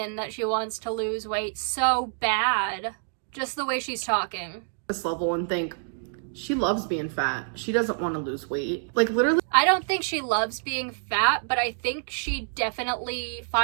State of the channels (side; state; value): left; silent; digital silence